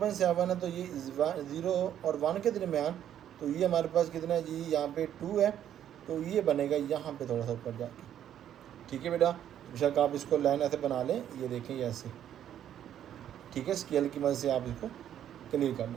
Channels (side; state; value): left; quieter; 10.5 dB